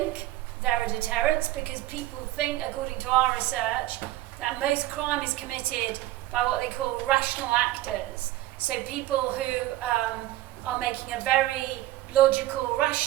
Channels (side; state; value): left; quieter; 15.7 dB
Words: they're a deterrence because people think, according to our research, that most crime is committed by what they call rational actors. So people who are making a very logical,